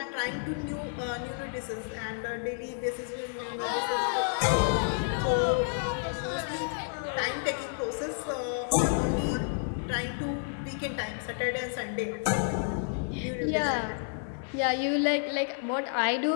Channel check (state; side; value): silent; right; 58 dB below the other